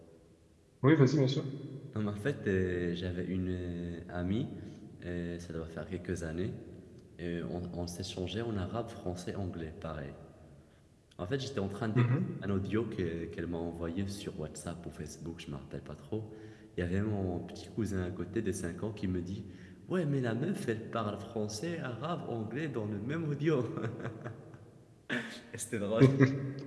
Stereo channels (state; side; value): identical; both; correlation 1.00